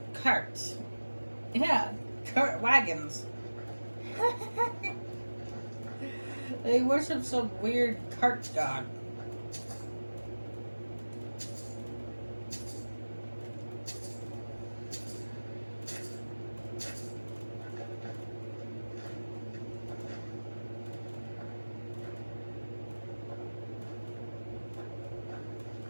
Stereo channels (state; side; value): inverted; both; correlation -1.00